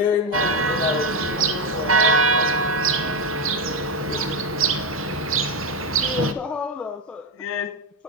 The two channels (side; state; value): both; normal; correlation 0.09